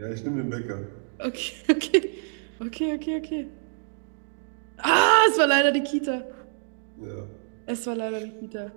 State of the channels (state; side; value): silent; left; digital silence